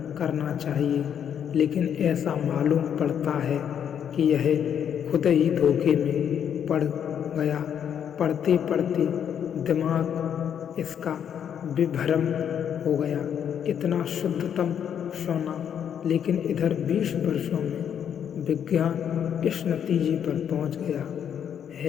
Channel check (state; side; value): quieter; right; 8.7 dB